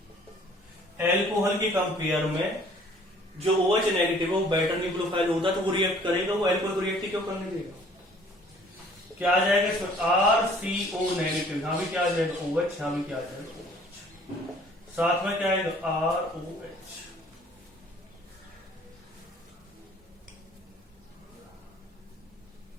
एल्कोहल के कंपेयर में जो OH नेगेटिव है वो बेटर न्यूक्लियोफाइल होता है, तो वो रिएक्ट करेगा, वो एल्कोहल को रिएक्ट क्यों करने देगा। क्या आ जाएगा इसमें, RCO नेगेटिव, यहां भी क्या आ जाएगा OH, यहां भी क्या आ जाएगा OH, साथ में क्या आएगा ROH।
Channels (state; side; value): normal; both; correlation 0.55